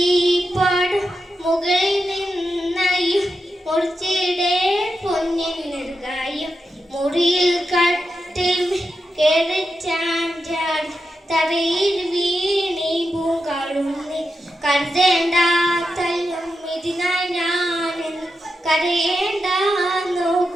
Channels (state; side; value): normal; both; correlation 0.88